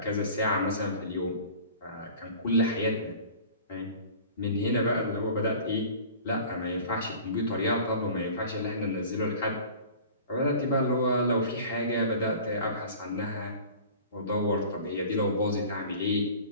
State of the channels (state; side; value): inverted; both; correlation -0.43